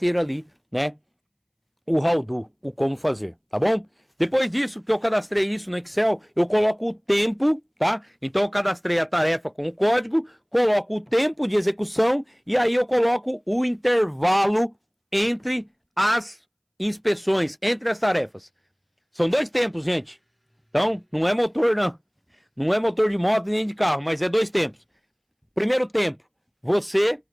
ali, né, o how do, o como fazer, tá bom? Depois disso, que eu cadastrei isso no Excel, eu coloco o tempo, tá? Então eu cadastrei a tarefa com o código, coloco o tempo de execução e aí eu coloco o intervalo entre as inspeções, entre as tarefas. São 2 tempos, gente. Então, não é motor, não. Não é motor de moto nem de carro, mas é 2 tempos. Primeiro tempo, você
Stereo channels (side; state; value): both; identical; correlation 1.00